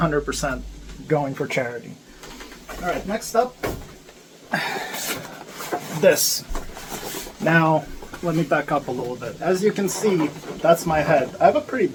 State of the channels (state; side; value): identical; both; correlation 1.00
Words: going for charity. Alright, next up, this. Now, let me back up a little bit. As you can see, that's my head. I have a pretty